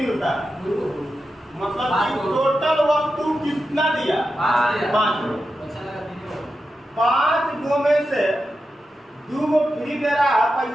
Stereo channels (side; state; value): both; normal; correlation 0.89